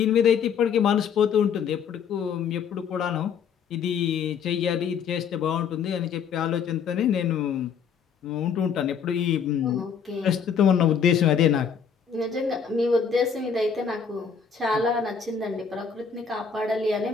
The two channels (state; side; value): quieter; right; 6.8 dB